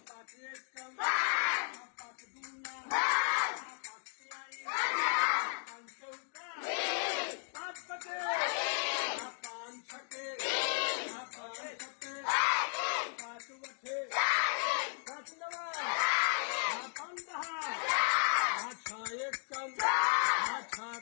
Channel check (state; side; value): silent; right; 54 dB below the other